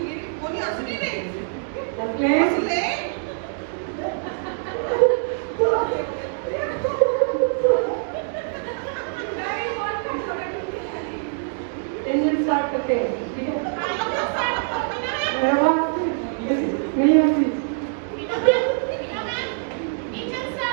इंजन स्टार्ट करते हैं ठीक है नहीं आती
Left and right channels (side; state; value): left; silent; digital silence